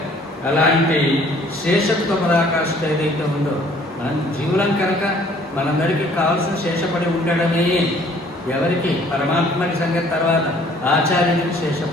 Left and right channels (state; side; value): normal; both; correlation 0.57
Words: అలాంటి శేషత్వ పరాకాష్ఠ ఏదైతే ఉందో మనం జీవులం కనుక మనందరికీ కావాల్సిన శేషపడి ఉండడమే. ఎవరికి? పరమాత్మకి సంగతి తర్వాత ఆచార్యుడికి